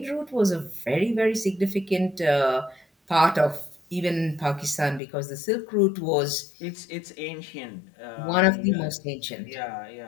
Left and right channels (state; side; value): drops out; right; at 5.0 s